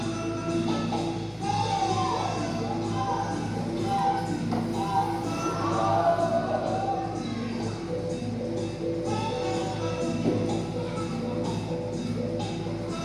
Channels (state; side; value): identical; both; correlation 1.00